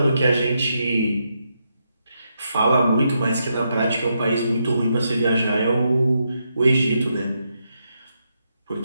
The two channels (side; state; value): both; inverted; correlation -0.82